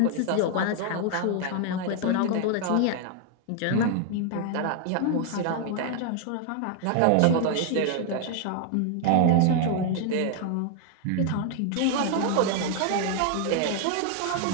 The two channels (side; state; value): both; different; correlation 0.00